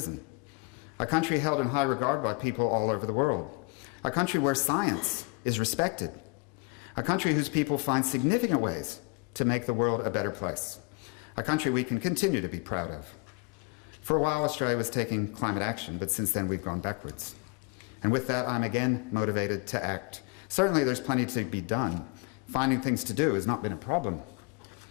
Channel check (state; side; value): quieter; right; 31.0 dB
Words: A country held in high regard by people all over the world. A country where science is respected. A country whose people find significant ways to make the world a better place. A country we can continue to be proud of. For a while, Australia was taking climate action, but since then we've gone backwards. And with that, I'm again motivated to act. Certainly there's plenty to be done. Finding things to do has not been a problem.